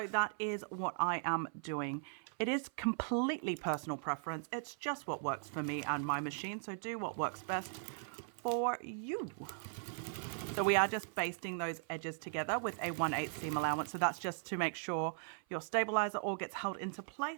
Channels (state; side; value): silent; left; 52 dB below the other